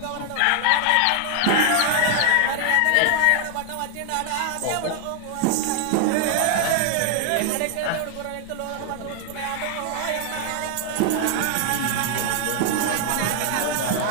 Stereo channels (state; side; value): different; both; correlation 0.00